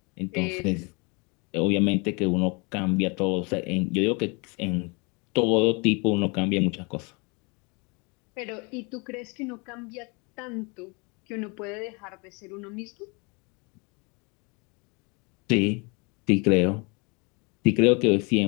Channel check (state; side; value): quieter; right; 30.6 dB